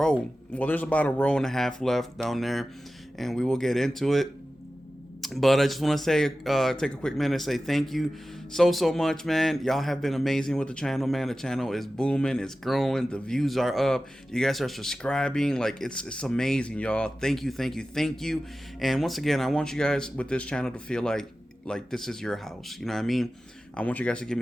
Well, there's about a row and a half left down there, and we will get into it. But I just want to say, take a quick minute and say thank you so much, man. Y'all have been amazing with the channel, man. The channel is booming, it's growing, the views are up, you guys are subscribing. Like, it's amazing, y'all. Thank you. And once again, I want you guys with this channel to feel like this is your house. You know what I mean? I want you guys to give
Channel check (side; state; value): both; normal; correlation 0.95